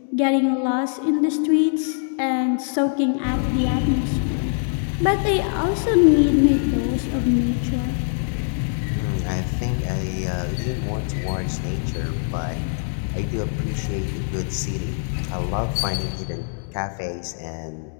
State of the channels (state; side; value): silent; right; digital silence